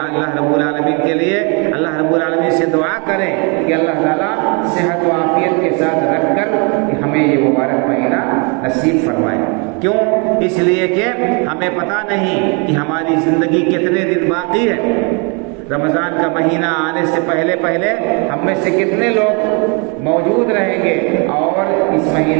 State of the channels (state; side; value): quieter; left; 33.7 dB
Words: رب العالمین کے لیے اللہ رب العالمین سے دعا کریں کہ اللہ تعالیٰ صحت و عافیت کے ساتھ رکھ کر کہ ہمیں یہ مبارک مہینہ نصیب فرمائے۔ کیوں؟ اس لیے کہ ہمیں پتہ نہیں کہ ہماری زندگی کتنے دن باقی ہے۔ رمضان کا مہینہ آنے سے پہلے ہم میں سے کتنے لوگ موجود رہیں گے، اور اس